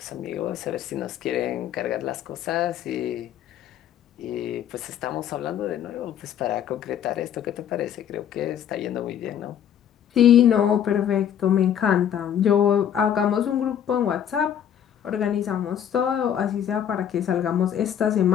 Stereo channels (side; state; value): right; quieter; 9.4 dB